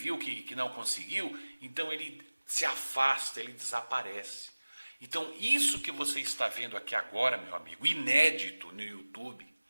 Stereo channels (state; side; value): inverted; both; correlation -1.00